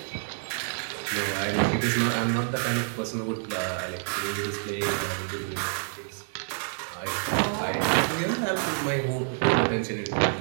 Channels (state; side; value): silent; left; 60 dB below the other